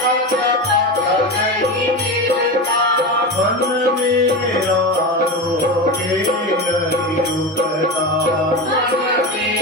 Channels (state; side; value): normal; both; correlation 0.22